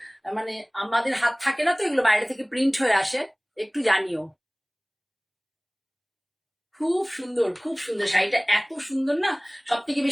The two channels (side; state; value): both; identical; correlation 1.00